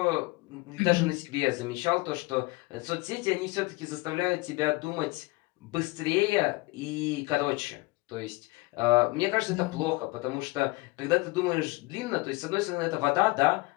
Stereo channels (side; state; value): right; quieter; 23.9 dB